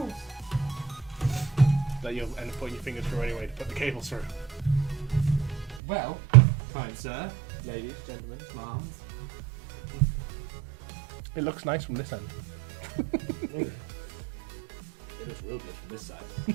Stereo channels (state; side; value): drops out; left; at 5.8 s